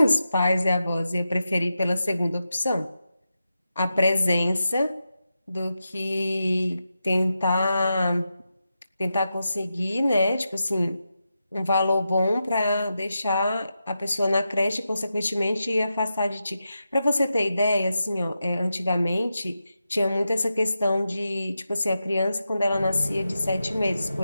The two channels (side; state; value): both; inverted; correlation -0.89